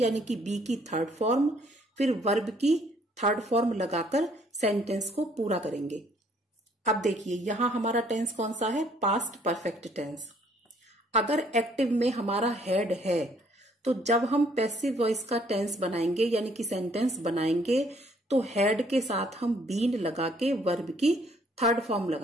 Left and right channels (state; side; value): normal; both; correlation 0.64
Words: कि बी की 3rd फॉर्म, फिर वर्ब की 3rd फॉर्म लगाकर सेंटेंस को पूरा करेंगे। अब देखिए यहां हमारा टेंस कौन सा है, पास्ट परफेक्ट टेंस। अगर एक्टिव में हमारा हैड है तो जब हम पैसिव वॉइस का टेंस बनाएंगे यानी कि सेंटेंस बनाएंगे तो हैड के साथ हम बीन लगा के वर्ब की 3rd फॉर्म